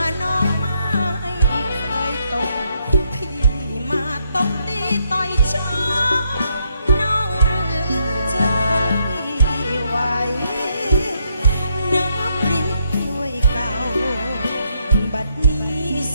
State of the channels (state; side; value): inverted; both; correlation -0.76